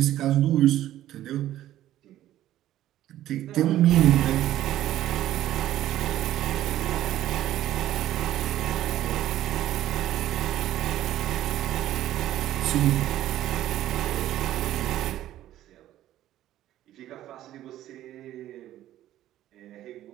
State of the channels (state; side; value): quieter; left; 13.3 dB